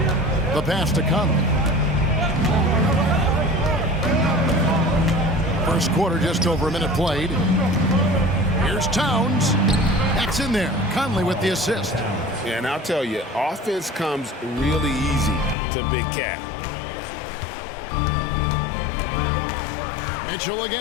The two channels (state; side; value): drops out; right; at 15.6 s